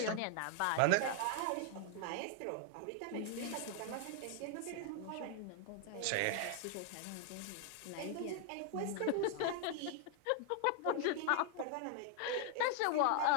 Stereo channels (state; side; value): different; both; correlation 0.00